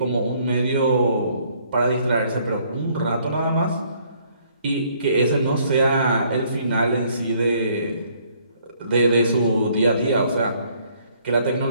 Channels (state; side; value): inverted; both; correlation -0.65